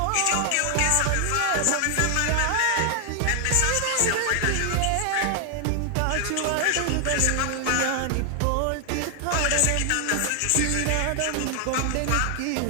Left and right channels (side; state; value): both; different; correlation 0.00